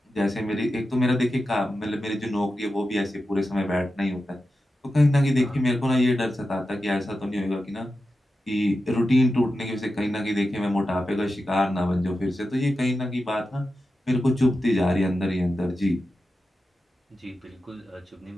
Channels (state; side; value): normal; both; correlation 0.91